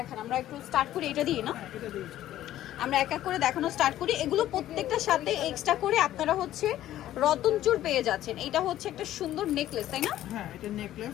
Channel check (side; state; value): right; quieter; 13.2 dB